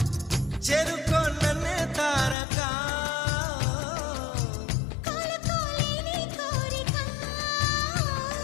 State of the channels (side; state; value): right; drops out; at 2.4 s